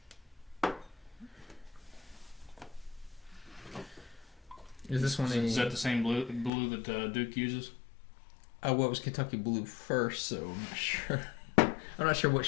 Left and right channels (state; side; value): drops out; right; at 6.5 s